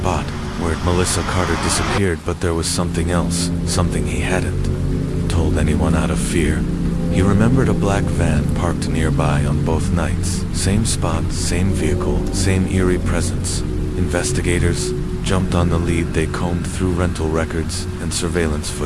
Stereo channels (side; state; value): both; identical; correlation 1.00